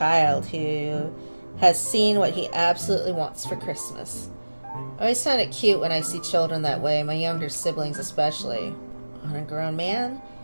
who has seen what he absolutely wants for Christmas. I always find it cute when I see children that way, my younger siblings especially. On a grown man,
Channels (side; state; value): both; inverted; correlation -1.00